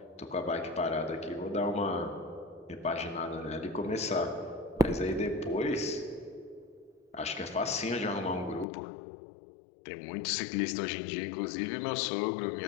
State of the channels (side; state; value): right; drops out; at 8.7 s